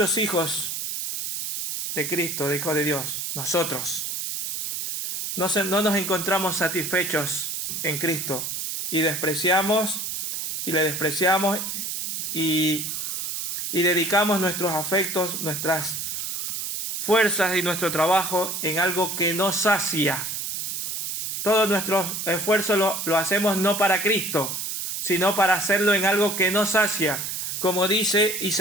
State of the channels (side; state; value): right; noise; hiss, 4 dB below the sound